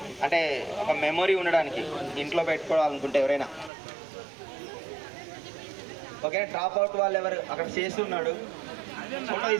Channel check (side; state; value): left; drops out; at 3.7 s